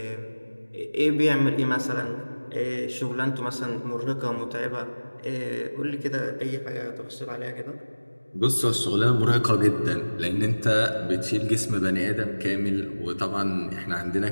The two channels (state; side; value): inverted; both; correlation -1.00